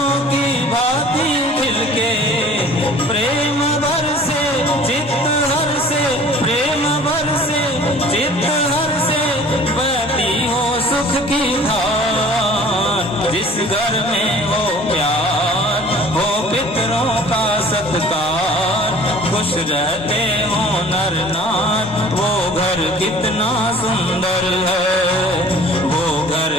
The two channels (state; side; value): normal; both; correlation 0.48